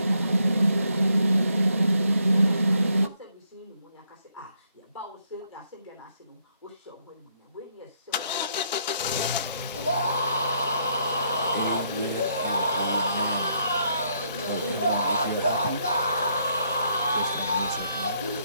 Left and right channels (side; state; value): both; inverted; correlation -0.73